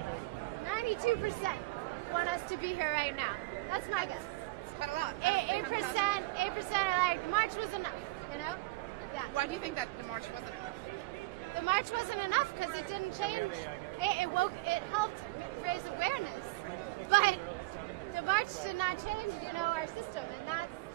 92% want us to be here right now. That's my guess. It's quite a lot out of 300,000. 8% are like, March was enough, you know? Yeah. Why do you think that the march wasn't enough? The march wasn't enough because it didn't change. It helped raise awareness, but the march did not change, you know, our system, and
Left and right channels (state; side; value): quieter; left; 22.1 dB